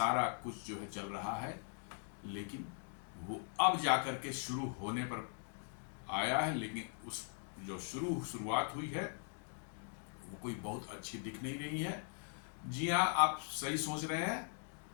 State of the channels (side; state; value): right; silent; 51 dB below the other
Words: कुछ जो है चल रहा है। लेकिन वो अब जाकर के शुरू होने पर आया है, लेकिन उस जो शुरुआत हुई है वो कोई बहुत अच्छी दिख नहीं रही है। जी हाँ, आप सही सोच रहे हैं,